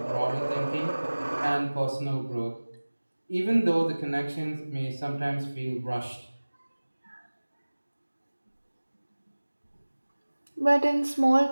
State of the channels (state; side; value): inverted; both; correlation -1.00